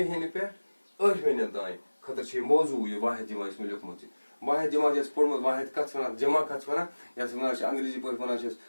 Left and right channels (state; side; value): inverted; both; correlation -1.00